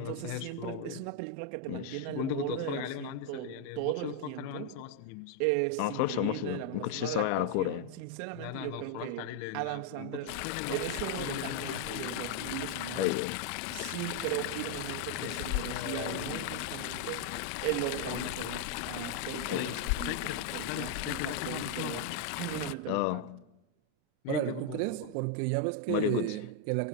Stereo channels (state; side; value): different; both; correlation 0.00